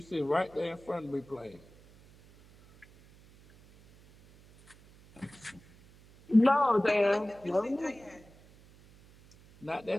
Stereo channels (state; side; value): noise; right; hum, 25 dB below the sound